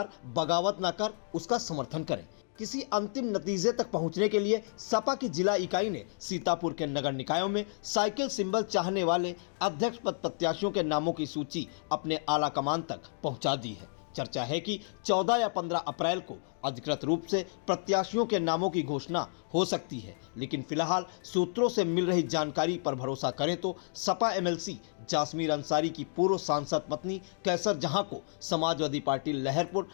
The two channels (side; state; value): right; silent; digital silence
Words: बगावत न कर उसका समर्थन करें। किसी अंतिम नतीजे तक पहुंचने के लिए सपा की जिला इकाई ने सीतापुर के नगर निकायों में साइकिल सिंबल चाहने वाले अध्यक्ष पद प्रत्याशियों के नामों की सूची अपने आला कमान तक पहुंचा दी है। चर्चा है कि 14 या 15 अप्रैल को अधिकृत रूप से प्रत्याशियों के नामों की घोषणा हो सकती है, लेकिन फिलहाल सूत्रों से मिल रही जानकारी पर भरोसा करें तो सपा एमएलसी जासमीर अंसारी की पूर्व सांसद पत्नी कैसर जहां को समाजवादी पार्टी लहरपुर